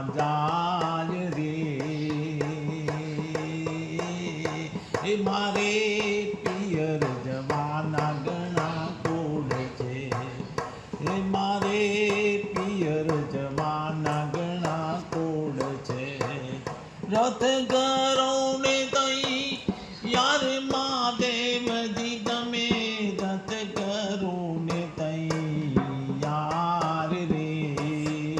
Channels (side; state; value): both; identical; correlation 1.00